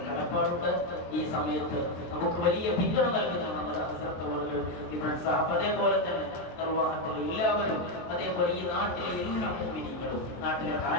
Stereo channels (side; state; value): right; late; 23 ms